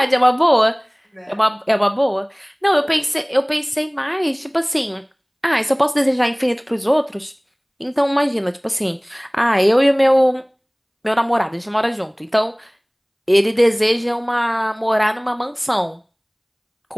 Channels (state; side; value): identical; both; correlation 1.00